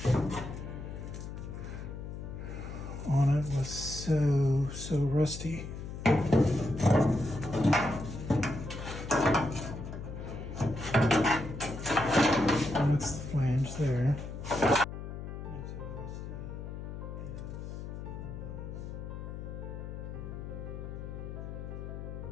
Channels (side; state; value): left; noise; hum, 8 dB below the sound